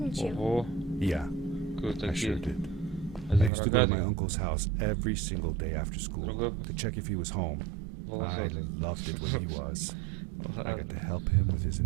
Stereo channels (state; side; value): drops out; left; at 3.5 s